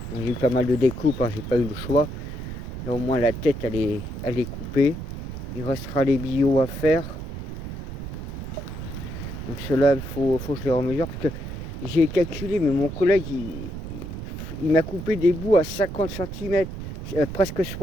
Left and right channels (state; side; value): noise; right; rumble, 8 dB below the sound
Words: J'ai eu pas mal de découpes, hein, j'ai pas eu le choix. Là au moins la tête elle est coupée. Il restera les billots à faire. Donc cela il faut que je les remesure parce que j'ai calculé, mais mon collègue il m'a coupé des bouts à 50 cm, presque